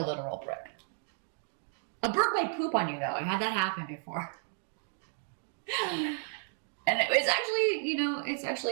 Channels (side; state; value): left; silent; 56 dB below the other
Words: literal brick. A bird might poop on you, though. I had that happen before. And it was actually, you know, it's